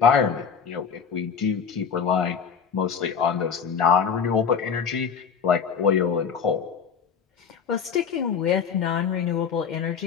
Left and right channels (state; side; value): quieter; right; 6.7 dB